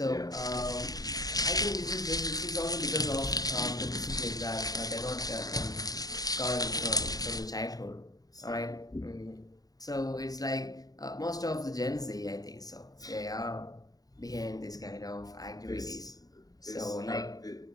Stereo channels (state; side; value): late; right; 0.18 ms